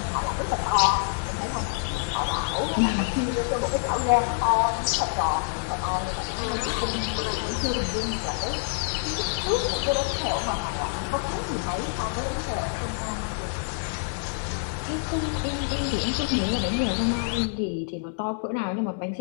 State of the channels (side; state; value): right; silent; digital silence